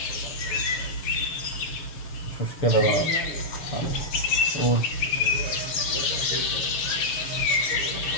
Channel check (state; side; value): late; right; 6.8 ms